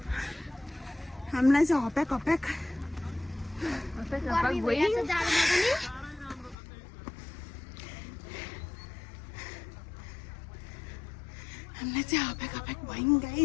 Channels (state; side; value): drops out; right; at 6.6 s